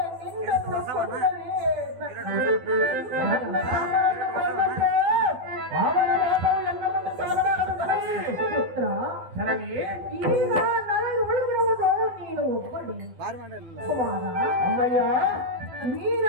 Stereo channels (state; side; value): late; left; 12 ms